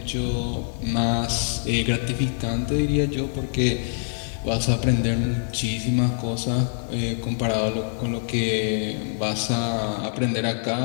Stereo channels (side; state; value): right; silent; 62 dB below the other